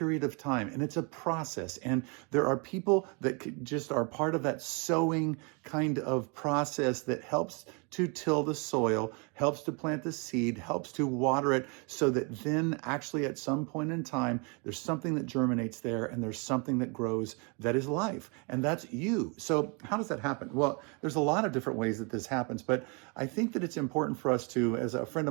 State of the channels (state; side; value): quieter; left; 33.0 dB